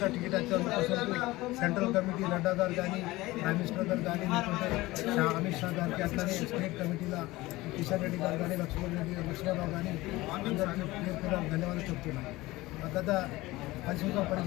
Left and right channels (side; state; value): right; quieter; 19.4 dB